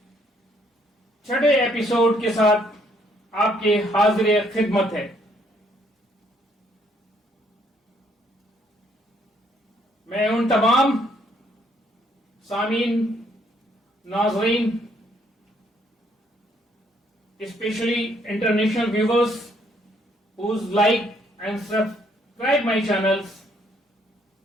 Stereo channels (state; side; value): normal; both; correlation 0.68